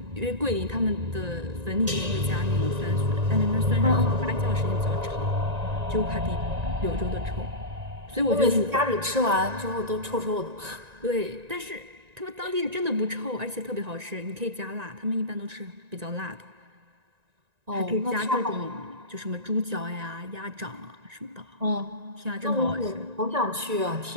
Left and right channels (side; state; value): left; late; 1.9 ms